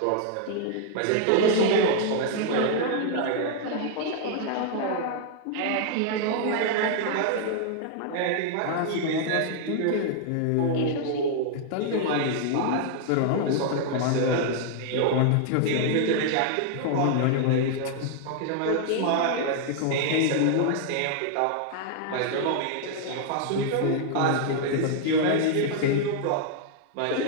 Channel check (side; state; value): both; different; correlation -0.01